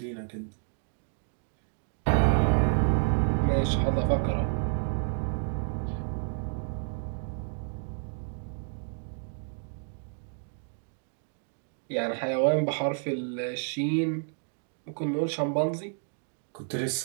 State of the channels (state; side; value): silent; left; 58 dB below the other